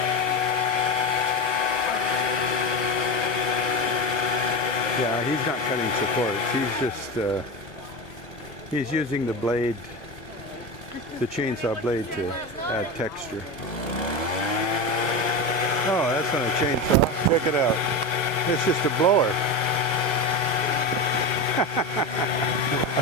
Yeah, he's not cutting supports. He's just He's using the blade, the chainsaw blade, to add texture. Oh, that's not a chainsaw. Check it out. It's just a blower. I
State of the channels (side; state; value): both; normal; correlation 0.21